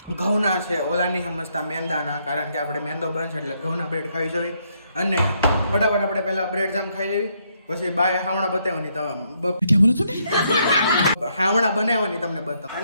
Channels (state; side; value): inverted; both; correlation -0.74